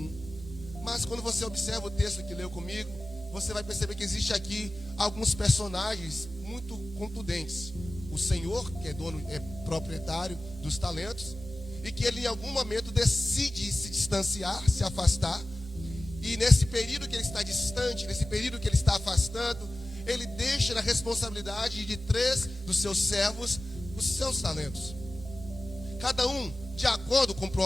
Mas quando você observa o texto que leu comigo, você vai perceber que existe aqui alguns personagens muito contundentes. O Senhor, que é dono, é proprietário dos talentos, e que ele em algum momento decide se distanciar, se afastar. E nesse período que ele está distante, nesse período que ele está afastando, ele deixa na responsabilidade de 3 dos seus servos os seus talentos. Cada um, de acordo com o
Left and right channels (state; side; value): normal; both; correlation 0.96